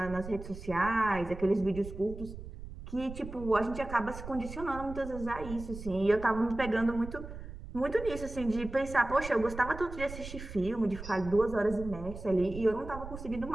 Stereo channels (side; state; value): right; noise; rumble, 11 dB below the sound